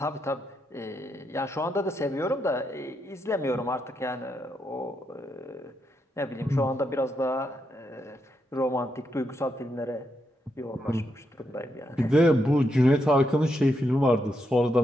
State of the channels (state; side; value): normal; both; correlation 0.82